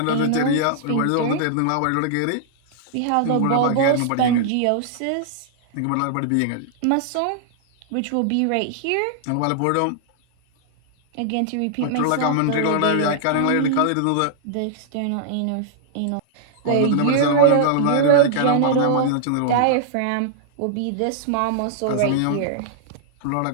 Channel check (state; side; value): different; both; correlation -0.01